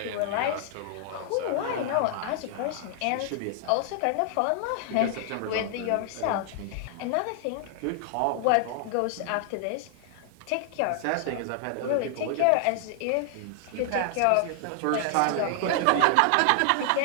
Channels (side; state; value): both; different; correlation 0.00